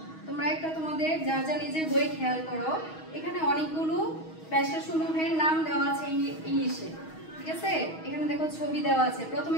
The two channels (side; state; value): right; late; 6.3 ms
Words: তোমরা একটা তোমাদের যা যা নিজের বই খেয়াল করো, এখানে অনেকগুলো পেশাসমূহের নাম দেওয়া আছে ইংলিশে, ঠিক আছে? এখানে দেখো ছবি দেওয়া আছে। প্রথমে